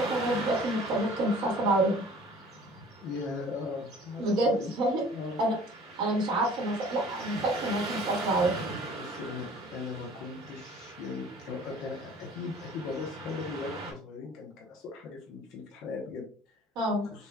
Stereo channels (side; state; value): both; normal; correlation 0.49